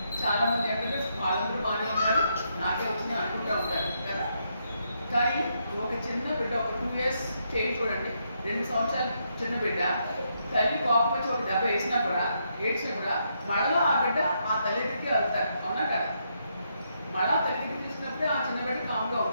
చాలామంది ఏంటంటే వాళ్ళందరూ బాగానే ఉన్నారు నాకే వచ్చింది అనుకుంటూ ఉంటారు కదా. కానీ ఒక చిన్న బిడ్డ ఒక 2 years చేయి చూడండి, 2 సంవత్సరాల చిన్న బిడ్డ తల్లి కోపం వచ్చి ఒక దెబ్బ వేసినా కూడా ఏడ్చినా కూడా మళ్ళా ఆ బిడ్డ ఆ తల్లి దగ్గరికి వెళ్తారు, అవునా కదా? మళ్ళా తల్లి దగ్గరికి తీసుకున్నప్పుడే ఆ చిన్న బిడ్డ కామ్గా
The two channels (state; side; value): inverted; both; correlation -0.78